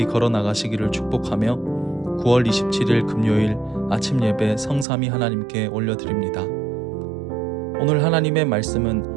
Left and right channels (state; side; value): drops out; left; at 4.9 s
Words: 걸어 나가시기를 축복하며 9월 27일 금요일 아침 예배 성삼위 하나님께 올려드립니다. 오늘 하나님의